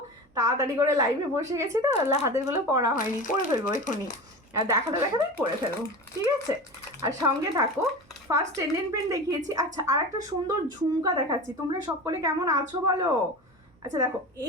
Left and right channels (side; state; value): both; normal; correlation 0.29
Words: তাড়াতাড়ি করে লাইভে বসে গেছি তো, হাতেরগুলো পড়া হয়নি। করে ফেলবো এখনই, দেখাতে করে ফেলবো। ঠিক আছে, আর সঙ্গে থাকো। ফার্স্ট টেন্ডেন পেন দেখিয়েছি। আচ্ছা, আর একটা সুন্দর ঝুমকা দেখাচ্ছি। তোমরা সকলে কেমন আছো বলো? আচ্ছা দেখো,